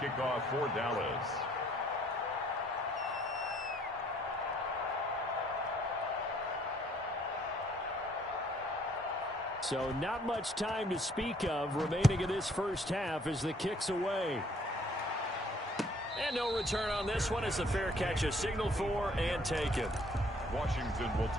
off for Dallas. So not much time to speak of remaining in this first half as the kick's away. And no return on this one as the fair catch is signaled for and taken. Washington will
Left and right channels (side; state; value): both; normal; correlation 0.62